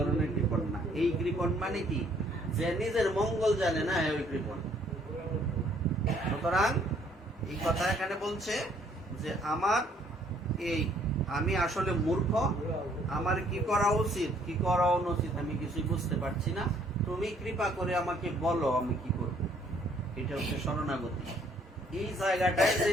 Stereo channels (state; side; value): normal; both; correlation 0.63